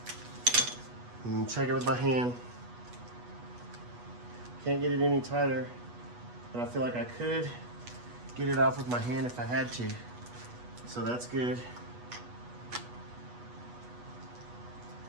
And check it with my hand. Can't get it any tighter, but I feel like I could get it off with my hand if I had to. So that's good.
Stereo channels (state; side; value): late; left; 8.2 ms